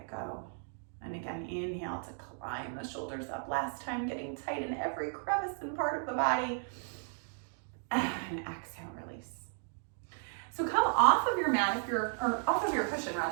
go. And again, inhale to climb the shoulders up. Last time, getting tight in every crevice and part of the body. And exhale, release. So come off of your mat, or off of your cushion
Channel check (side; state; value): left; silent; 55 dB below the other